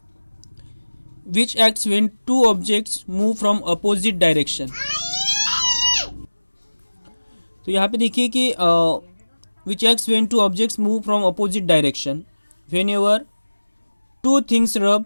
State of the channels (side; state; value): both; inverted; correlation -1.00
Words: which acts when two objects move from opposite direction. तो यहाँ पे देखिए कि which acts when two objects move from opposite direction when ever two things rub